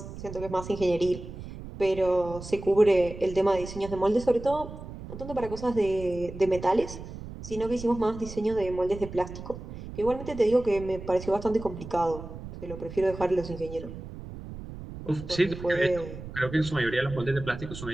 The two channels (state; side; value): noise; right; rumble, 11 dB below the sound